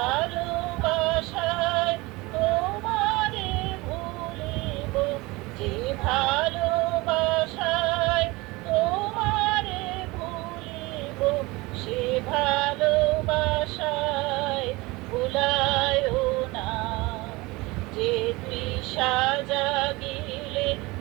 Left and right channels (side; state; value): left; quieter; 22.7 dB